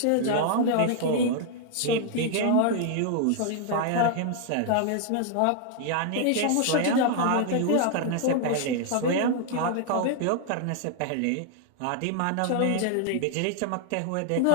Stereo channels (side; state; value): both; different; correlation 0.00